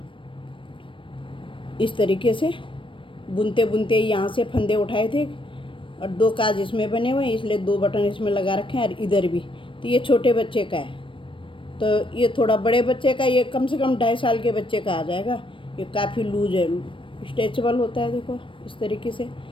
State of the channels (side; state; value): right; late; 0.25 ms